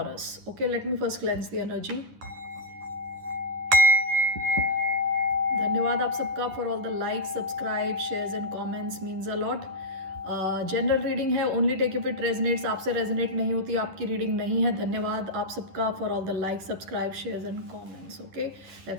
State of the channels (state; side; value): late; left; 11 ms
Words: Okay, let me first cleanse the energy. धन्यवाद आप सबका for all the like, subscribe, shares and comments, means a lot. General reading है, only take if it resonates. आपसे resonate नहीं होती आपकी reading नहीं है। धन्यवाद आप सबका for all the like, subscribe, shares and comments. Okay,